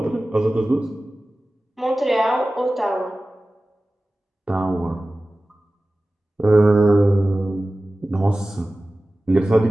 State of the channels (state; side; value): normal; both; correlation 0.96